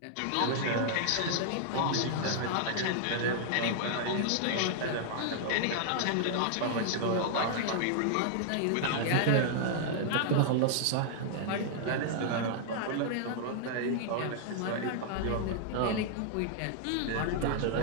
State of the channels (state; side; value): different; both; correlation -0.01